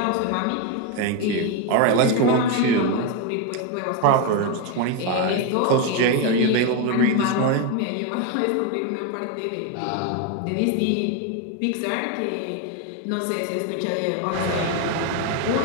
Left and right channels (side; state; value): both; different; correlation 0.02